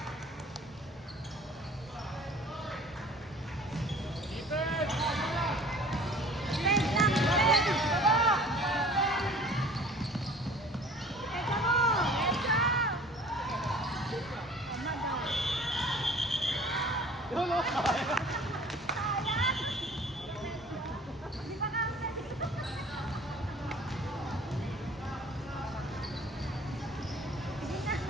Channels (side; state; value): both; normal; correlation 0.47